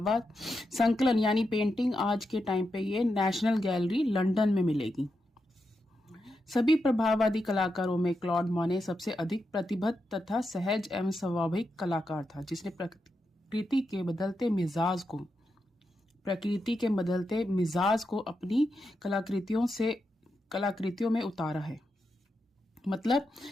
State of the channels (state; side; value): normal; both; correlation 0.86